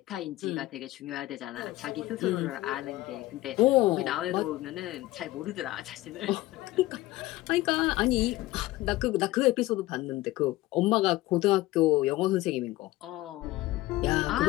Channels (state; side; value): quieter; right; 17.8 dB